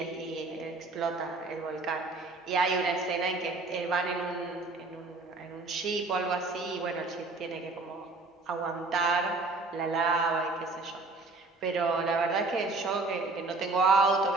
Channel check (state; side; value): quieter; left; 3.5 dB